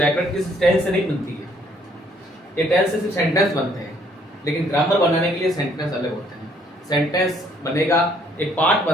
किस टेंस से नहीं बनती है। ये टेंस से सिर्फ सेंटेंस बनते हैं, लेकिन ग्रामर बनाने के लिए सेंटेंस अलग होते हैं। सेंटेंस बनेगा, एक पार्ट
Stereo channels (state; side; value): normal; both; correlation 0.64